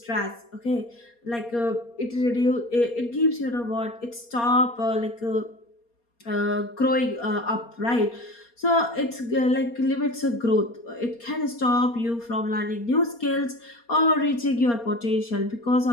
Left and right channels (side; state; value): right; late; 4.3 ms